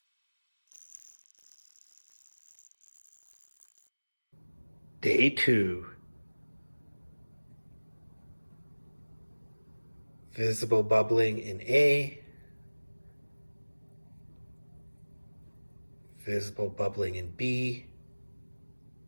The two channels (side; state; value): both; inverted; correlation -1.00